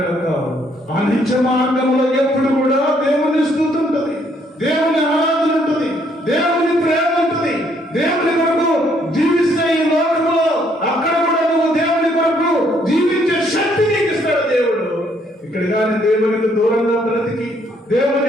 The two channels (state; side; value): normal; both; correlation 0.68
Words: ఆ నిత్య మార్గంలో ఎప్పుడు కూడా దేవుని స్తుతి ఉంటుంది, దేవుని ఆరాధన ఉంటుంది, దేవుని ప్రేమ ఉంటుంది. దేవుని కొరకు జీవిస్తే ఈ లోకంలో అక్కడ కూడా నువ్వు దేవుని కొరకు జీవించే శక్తి నీకు ఇస్తాడు దేవుడు. ఇక్కడ కానీ దేవునికి దూరంగా బ్రతికి,